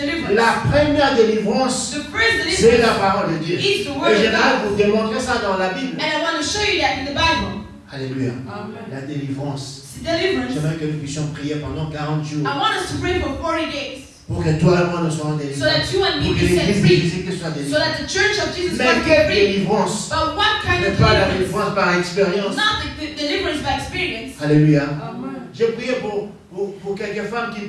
La première délivrance, The first c'est la deliverance parole de Dieu. is the Et word of j'aimerais God. vous démontrer ça dans la Bible. And I want to show you that in the Bible. Alléluia. La délivrance. It's deliverance. J'aimerais que nous puissions prier pendant 40 jours I want us to pray for 40 days pour que toi et moi nous soyons so délivrés. that you and me Pour que be set l'église de free. Jésus-Christ soit So délivrée. that the church of Jesus Mais Christ be quelle free. délivrance? But what kind Mais of pas la deliverance? délivrance par expérience. Not the deliverance by experience. Alléluia. J'ai prié pour quelques femmes qui ne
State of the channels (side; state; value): both; identical; correlation 1.00